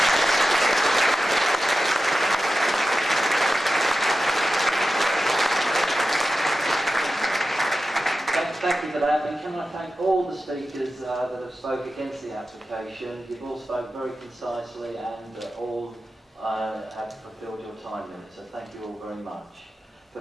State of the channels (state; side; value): normal; both; correlation 0.93